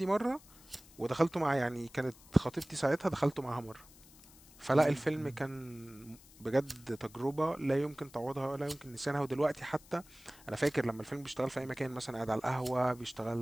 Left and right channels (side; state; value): left; noise; hiss, 23 dB below the sound